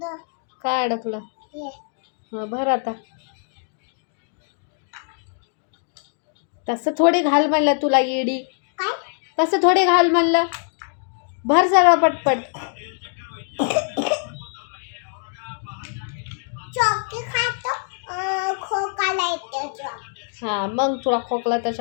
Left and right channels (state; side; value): silent; right; digital silence